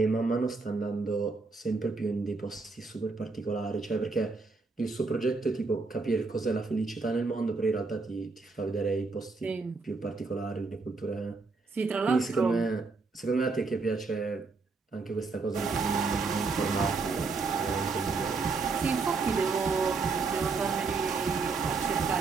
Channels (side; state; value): left; quieter; 4.2 dB